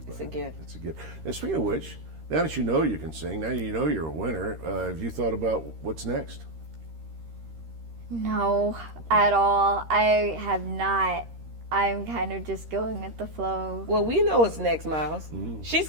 it. It's a gift. It's a gift. And speaking of which, now that you know you can sing, now you know you're a winner, have you thought about what's next? No, at all. I have not. I'm kind of just going with the flow. Well, we know what's next, Miles. She's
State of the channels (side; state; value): left; late; 13 ms